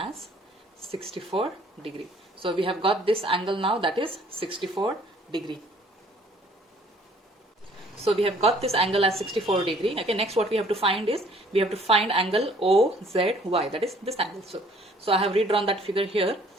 as 64 degree. So we have got this angle now, that is 64 degree. So we have got this angle as 64 degree. Okay, next what we have to find is, we have to find angle OZY, that is this angle. So I have redrawn that figure here.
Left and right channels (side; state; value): both; normal; correlation 0.58